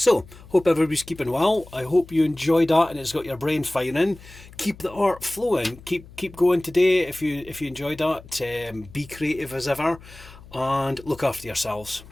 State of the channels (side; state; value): left; noise; hum, 20 dB below the sound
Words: hope everybody's keeping well. I hope you enjoyed that and it's got your brain firing. Keep the art flowing. Keep going today if you enjoyed that. Be creative as ever, and look after yourselves.